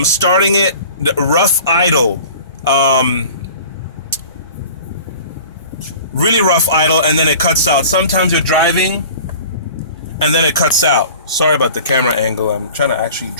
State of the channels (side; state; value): both; inverted; correlation -0.42